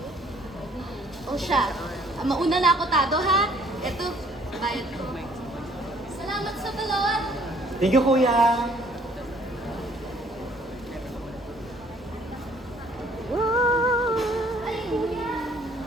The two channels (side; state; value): both; normal; correlation 0.59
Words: O siya, mauna na ako, Tado, ha? Eto, bayad ko. Salamat sa balot! Thank you, kuya. Ay, kuya!